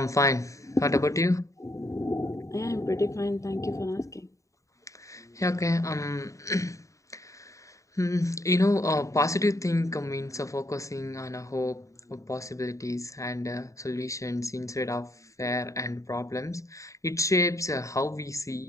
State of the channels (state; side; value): late; right; 0.16 ms